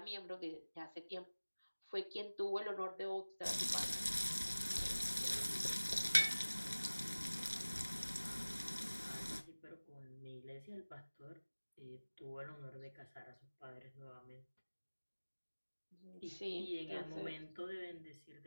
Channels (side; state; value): both; inverted; correlation -1.00